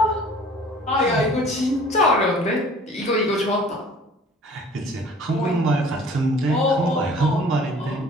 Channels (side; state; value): both; normal; correlation 0.50